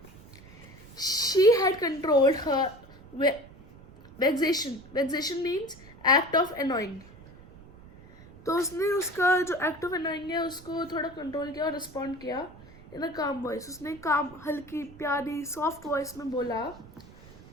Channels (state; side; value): noise; right; rumble, 21 dB below the sound